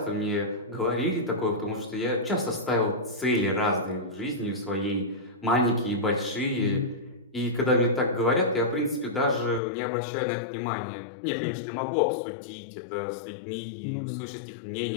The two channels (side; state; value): right; drops out; at 9.6 s